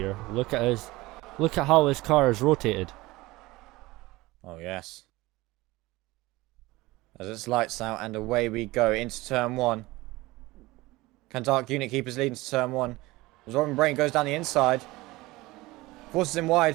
Look at how his car is rotated. Oh yes. As it's lights out and away we go into turn 1. Can Dark Unit keep his lead into turn 1? As Robin Brain goes down the inside. Forces him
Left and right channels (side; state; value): left; quieter; 20.3 dB